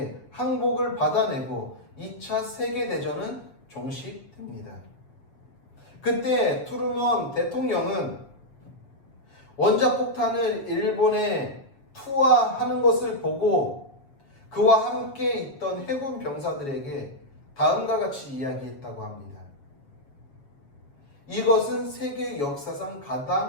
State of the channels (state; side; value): late; right; 7.1 ms